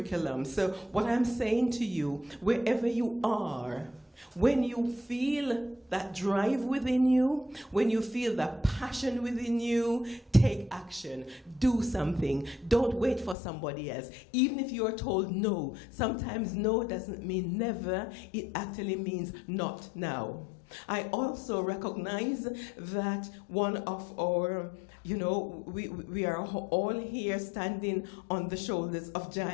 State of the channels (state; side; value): drops out; right; at 13.4 s